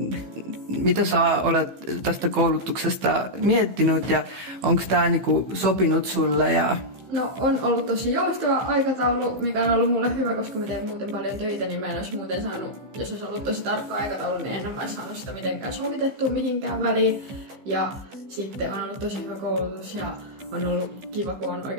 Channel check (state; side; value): late; left; 15 ms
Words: sä olet tästä koulutuksesta miettinyt ja onko tämä niinku sopinut sulle? No on ollut tosi joustava aikataulu, mikä on ollut mulle hyvä, koska mä teen muuten paljon töitä, niin mä en olisi muuten saanut, jos olisi ollut tosi tarkka aikataulu, niin en olisi saanut sitä mitenkään sovitettua mihinkään väliin. Ja sitten on ollut tosi hyvä koulutus ja on ollut kiva, kun on